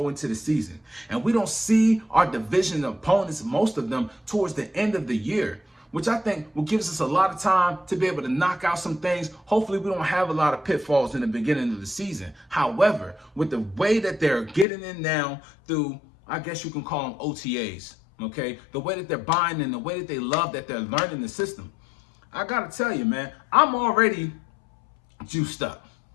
into the season. And we don't see our division opponents, most of them, towards the end of the year. which I think will give us a lot of time to be able to knock out some things. Hopefully we don't have a lot of pitfalls in the beginning of the season. However, with the way that they're getting in now through, I guess you can call them OTAs, okay? The way that they're buying in, the way that they love that they're learning the system. I gotta tell you, man, I'm already juiced up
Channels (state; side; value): drops out; right; at 14.7 s